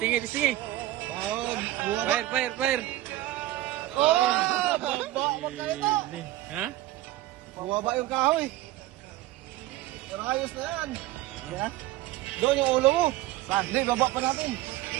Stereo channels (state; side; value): quieter; left; 15.7 dB